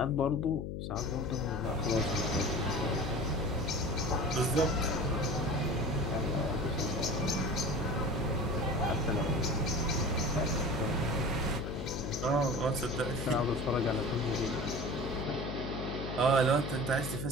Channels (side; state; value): left; noise; hum, 5 dB below the sound